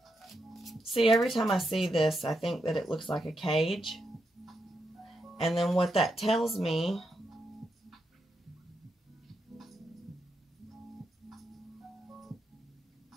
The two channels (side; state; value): both; normal; correlation 0.83